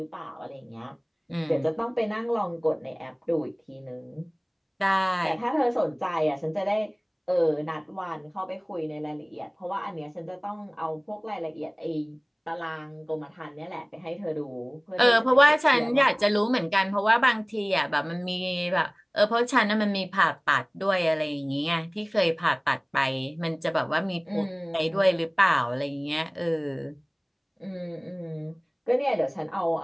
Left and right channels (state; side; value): identical; both; correlation 1.00